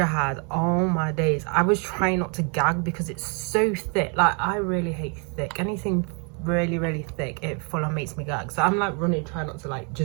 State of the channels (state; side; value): quieter; left; 36.4 dB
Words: had. Oh my days, I was trying not to gag because it's so thick. Like, I really hate thick. Anything really thick, it full on makes me gag. So I'm like running, trying not to like